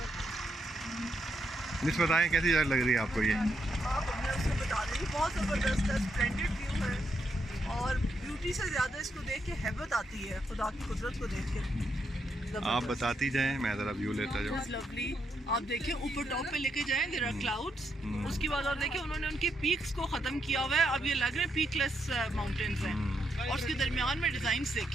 मिस बताएं कैसी जगह लग रही है आपको ये? बता रही बहुत ज़बरदस्त है, स्प्लेंडेड व्यू है और ब्यूटी से ज़्यादा इसको देख के हैबत आती है, खुदा की कुदरत को देख के। आप बताती जाएं, मैं ज़रा व्यू लेता जाऊँ। लवली, आप देखें ऊपर टॉप पे लेके जाएं, देयर आर क्लाउड्स। उसके बाद और देखें उन्होंने उनके पीक्स को ख़त्म किया हुआ है, अब ये लग रहे हैं पीकलेस माउंटेन्स हैं। और उसके दरमियान में डिज़ाइंस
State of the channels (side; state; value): both; normal; correlation 0.80